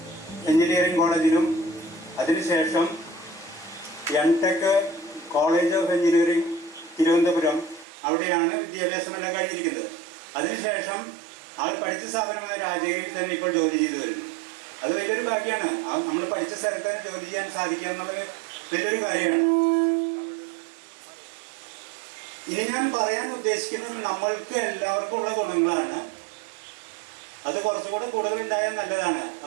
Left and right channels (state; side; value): drops out; left; at 7.9 s